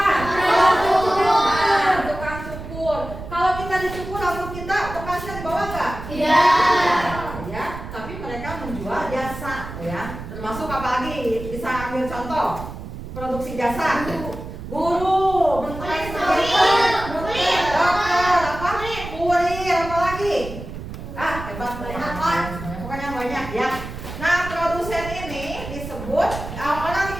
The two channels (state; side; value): noise; right; rumble, 10 dB below the sound